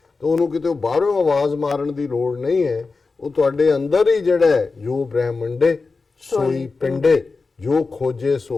ਤਾਂ ਉਹਨੂੰ ਕਿਤੇ ਬਾਹਰੋਂ ਆਵਾਜ਼ ਮਾਰਨ ਦੀ ਲੋੜ ਨਹੀਂ ਹੈ। ਉਹ ਤੁਹਾਡੇ ਅੰਦਰ ਹੀ ਜਿਹੜਾ ਹੈ, ਜੋ ਬ੍ਰਹਿਮੰਡੇ ਸੋਈ ਪਿੰਡੇ, ਜੋ ਖੋਜੇ ਸੋ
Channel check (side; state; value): right; quieter; 4.1 dB